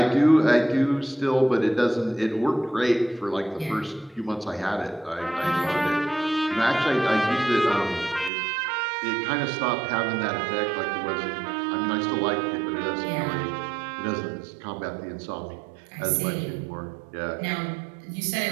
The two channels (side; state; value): left; drops out; at 8.3 s